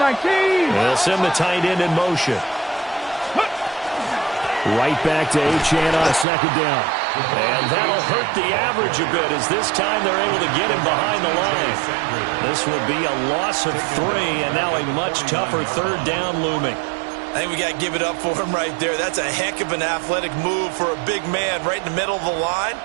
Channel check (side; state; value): left; drops out; at 6.2 s